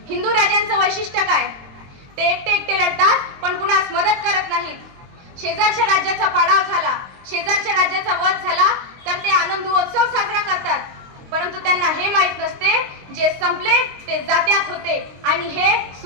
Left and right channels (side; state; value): left; late; 22 ms